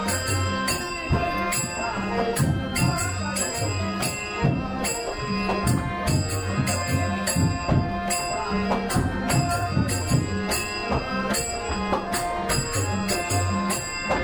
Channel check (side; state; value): both; identical; correlation 1.00